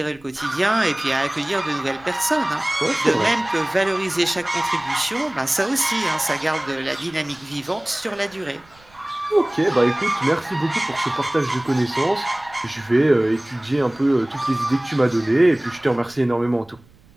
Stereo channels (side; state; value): right; noise; rumble, 27 dB below the sound